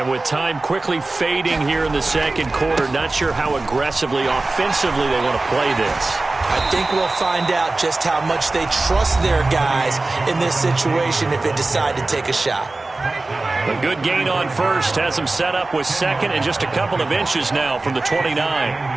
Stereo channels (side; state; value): left; quieter; 3.2 dB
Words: with time quickly fading here in the second quarter, not sure how aggressively, offensively they want to play this. I think we'll find out just how much they trust their guys in this situation if they decide to take a shot. A good gain on first has them set up with 2nd and just a couple of inches now from the 29.